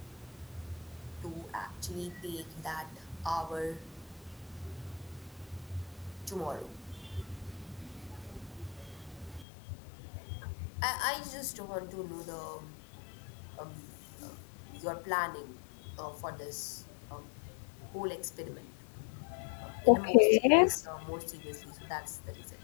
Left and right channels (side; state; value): right; drops out; at 9.5 s